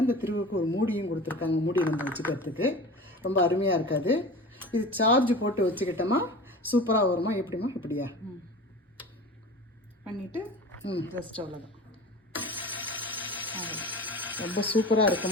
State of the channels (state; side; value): normal; both; correlation 0.36